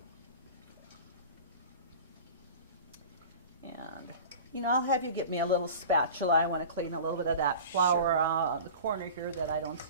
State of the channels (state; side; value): inverted; both; correlation -0.38